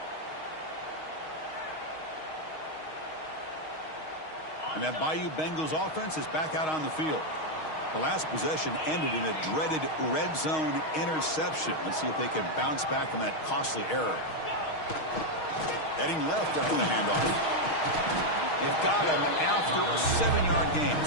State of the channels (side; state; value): right; late; 6.4 ms